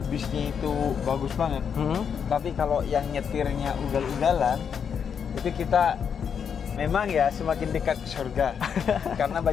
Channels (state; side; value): quieter; right; 7.2 dB